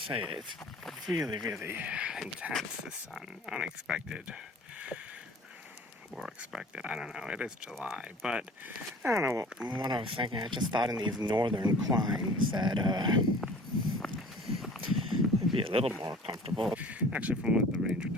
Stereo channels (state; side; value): normal; both; correlation 0.46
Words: say, it's really, really intense, the sun. Unexpected. Or expected, I don't know. It is July, but I don't know what I was thinking. I just thought in these northern climes that it'd be a little more comfortable. Actually, from what the ranger